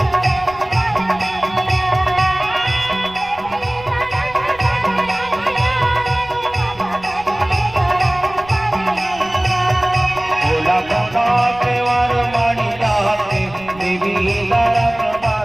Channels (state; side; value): noise; right; rumble, 22 dB below the sound